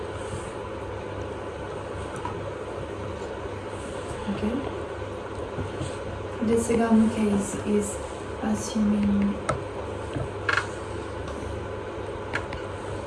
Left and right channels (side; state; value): both; identical; correlation 1.00